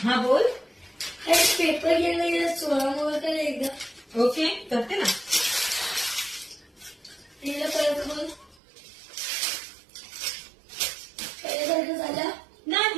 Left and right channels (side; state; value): left; drops out; at 8.6 s